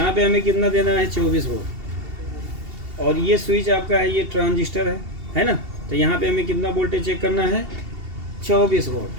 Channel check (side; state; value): left; late; 2.8 ms